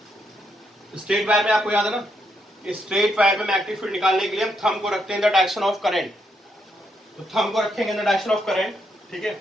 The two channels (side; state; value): both; normal; correlation 0.78